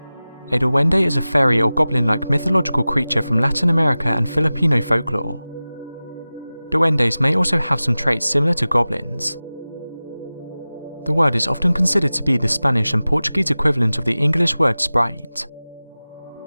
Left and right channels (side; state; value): both; inverted; correlation -0.97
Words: A duende is a fairy or goblin-like mythological creature from Latin America and Filipino folklore. Duendes may also have some traits similar to goblins. The word is often considered to be the Spanish and Portuguese equivalent of the English word sprite.